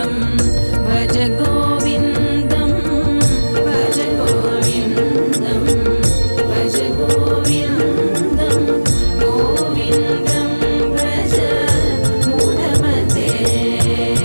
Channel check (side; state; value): both; inverted; correlation -1.00